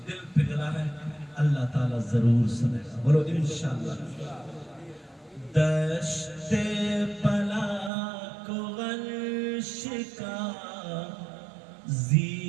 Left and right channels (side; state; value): left; drops out; at 7.9 s